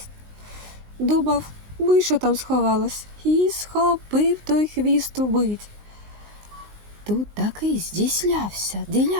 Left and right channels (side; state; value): left; late; 19 ms